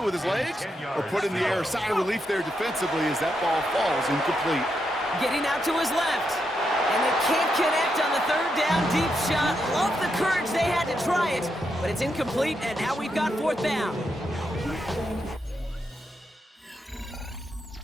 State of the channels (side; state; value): both; normal; correlation 0.82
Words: with his legs or put it in the air. Sigh of relief there defensively as that ball falls incomplete. Getting out to his left. And they can't connect on the 3rd down deep shot. Love the courage they had to try it, but it's incomplete, and now we've got 4th down.